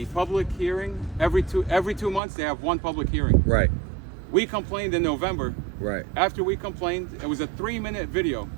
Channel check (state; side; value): drops out; left; at 2.2 s